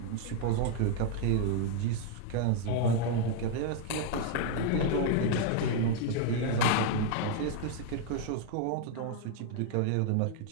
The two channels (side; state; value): both; different; correlation 0.00